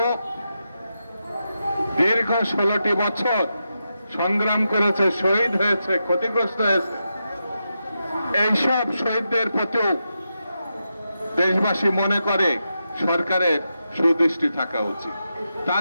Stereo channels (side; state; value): both; inverted; correlation -0.87